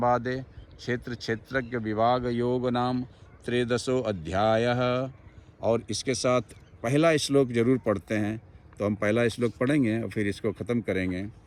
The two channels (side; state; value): both; identical; correlation 1.00